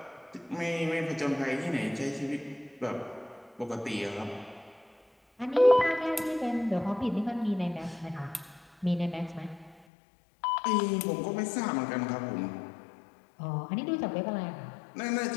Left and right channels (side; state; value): right; drops out; at 9.8 s